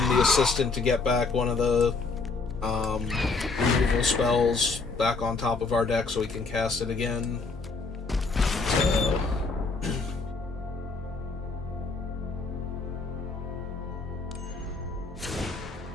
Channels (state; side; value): quieter; right; 4.0 dB